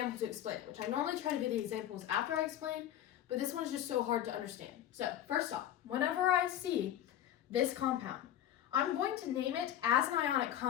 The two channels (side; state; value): right; quieter; 11.6 dB